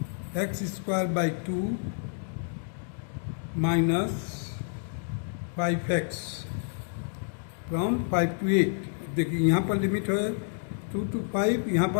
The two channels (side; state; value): right; silent; 59 dB below the other